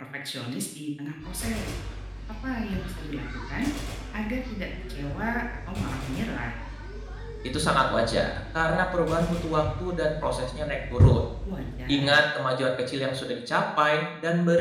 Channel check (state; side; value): identical; both; correlation 1.00